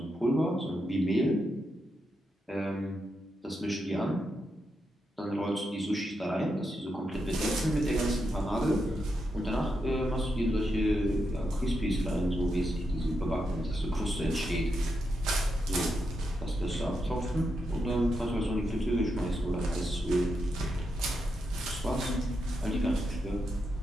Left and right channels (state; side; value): normal; both; correlation 0.84